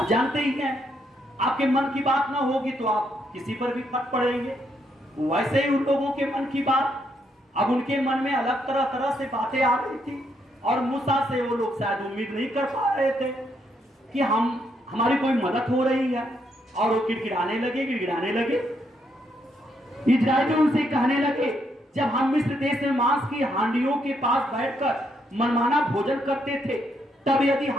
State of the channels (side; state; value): both; normal; correlation 0.75